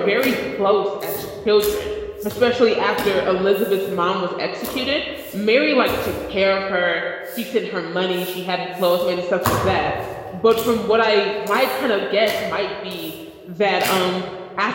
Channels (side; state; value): both; identical; correlation 1.00